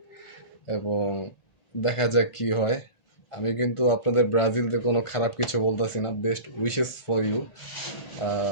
এবং দেখা যাক কি হয়। আমি কিন্তু আপনাদের ব্রাজিলদের কোনো খারাপ কিছু বলতেছি না, বেস্ট উইশেস ফর ইউ।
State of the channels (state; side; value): late; right; 1.5 ms